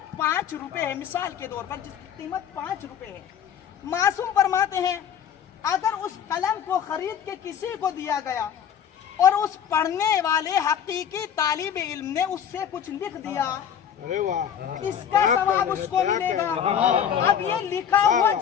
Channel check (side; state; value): right; quieter; 8.7 dB